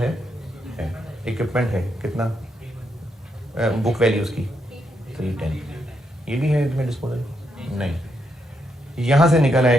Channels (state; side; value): normal; both; correlation 0.80